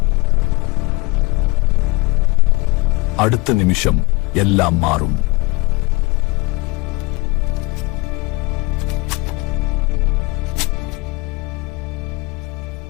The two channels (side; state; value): right; quieter; 25.3 dB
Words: അടുത്ത നിമിഷം എല്ലാം മാറും.